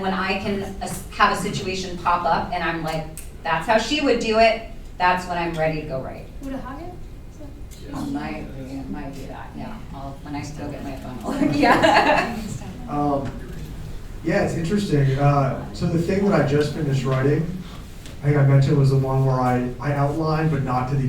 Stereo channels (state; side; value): identical; both; correlation 1.00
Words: when I can have a situation pop up and I'm like, that's how she would do it, that's when I'm ready to go write. Would a Hagen? Might do that, yeah. myself when I still get my funnel. Yeah. Yeah, it's interesting. So the thing that I just finished writing, I think I mentioned, was the one where I outlined, but not to the